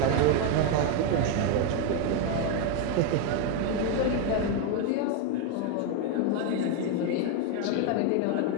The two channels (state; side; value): different; both; correlation 0.02